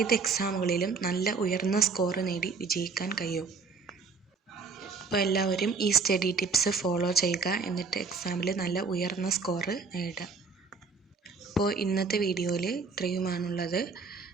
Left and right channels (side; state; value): left; quieter; 4.7 dB